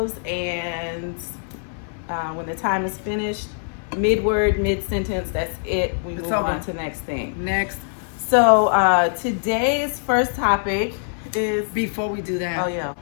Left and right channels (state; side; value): silent; right; 58 dB below the other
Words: and when the time is finished, mid-word, mid-sentence, that's it. We It's move over. on to the next thing. Next, So today's first topic is... before we do that, Oh, yeah.